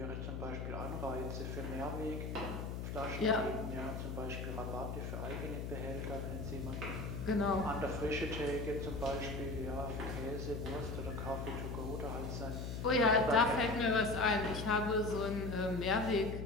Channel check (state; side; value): noise; left; hum, 4 dB below the sound